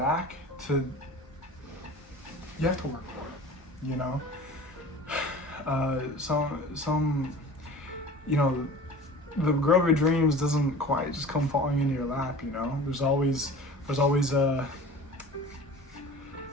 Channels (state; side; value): normal; both; correlation 0.40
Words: you have to work for it, you know. Some, you know, the girl of your dreams doesn't quite just come falling into your lap, you know. There's always a